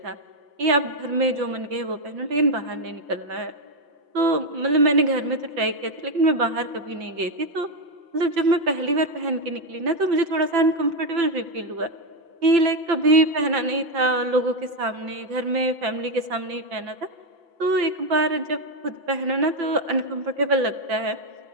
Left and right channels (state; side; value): late; left; 5.9 ms